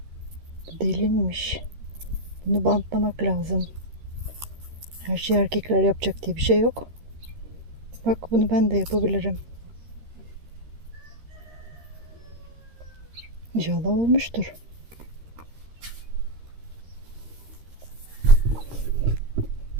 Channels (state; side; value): late; left; 13 ms